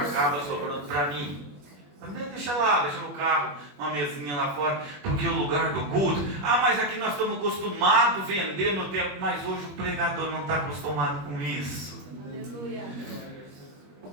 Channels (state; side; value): late; left; 21 ms